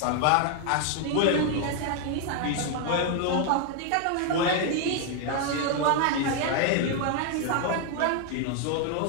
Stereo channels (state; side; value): different; both; correlation 0.00